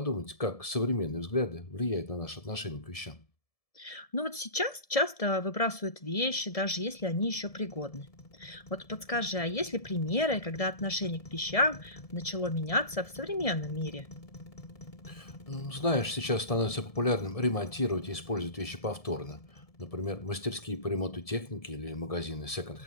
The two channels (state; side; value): late; right; 1.7 ms